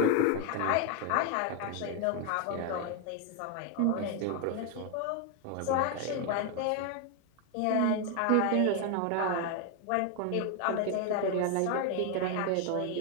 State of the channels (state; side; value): different; both; correlation 0.01